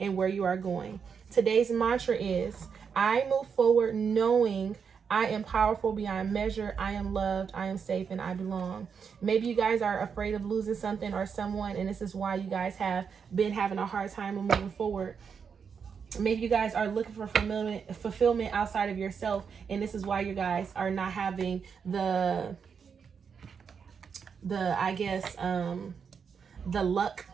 where you are going. Today's mantra is, I move forward knowing I am powerful beyond measure. I am loved. I am safe, and I belong. Maybe you guys are afraid of losing something or someone, and this is why you guys have been having a hard time moving forward. Maybe you guys are looking for fulfillment outside of yourself, and this is why you guys are not having the luck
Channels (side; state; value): left; quieter; 6.4 dB